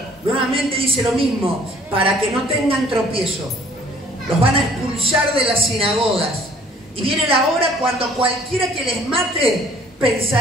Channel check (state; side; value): normal; both; correlation 0.57